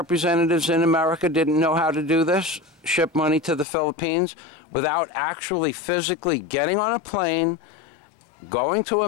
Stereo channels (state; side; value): drops out; right; at 3.7 s